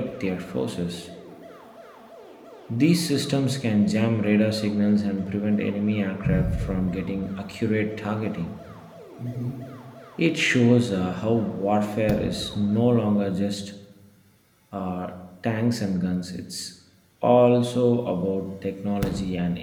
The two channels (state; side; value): identical; both; correlation 1.00